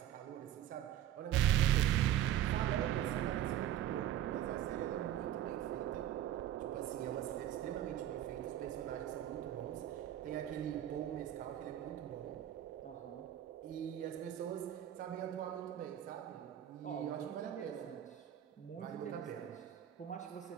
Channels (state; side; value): quieter; left; 11.8 dB